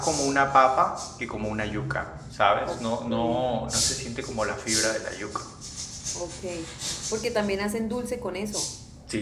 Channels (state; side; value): identical; both; correlation 1.00